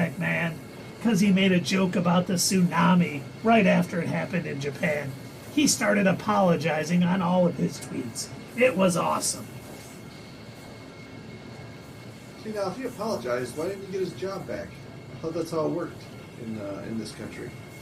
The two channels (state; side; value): identical; both; correlation 1.00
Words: man, because he made a joke about the tsunami right after it happened in Japan, he started apologizing on all of his tweets. It was awesome. See, now, if he apologized, why didn't he get his job back? I thought that's how it worked in this country.